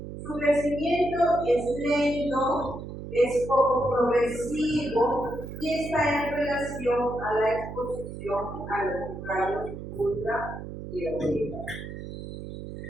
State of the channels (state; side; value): noise; right; hum, 9 dB below the sound